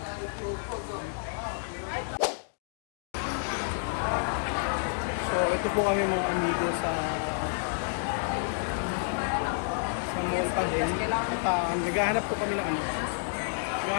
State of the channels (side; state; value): right; silent; digital silence